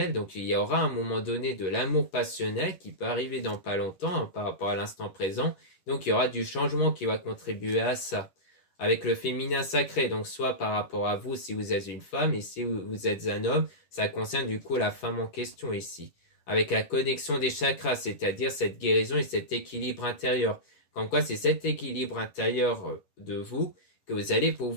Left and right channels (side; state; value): right; late; 11 ms